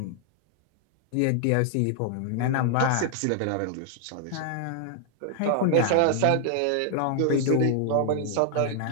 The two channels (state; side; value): different; both; correlation 0.00